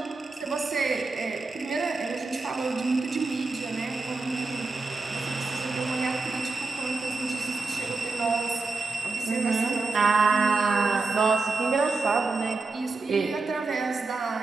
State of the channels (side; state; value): left; quieter; 3.9 dB